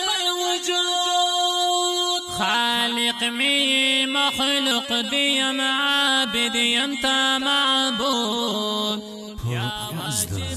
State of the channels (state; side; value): identical; both; correlation 1.00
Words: الوجود خالق مي مخلوق ديم عابد يمتا معبود يا